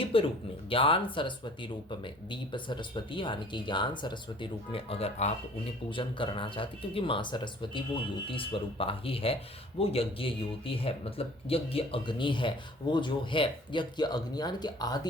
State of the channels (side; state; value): both; normal; correlation 0.51